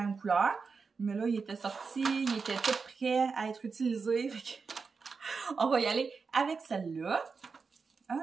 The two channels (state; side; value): quieter; left; 5.0 dB